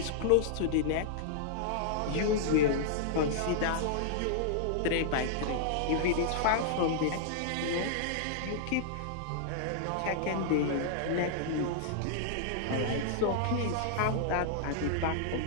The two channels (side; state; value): both; different; correlation -0.01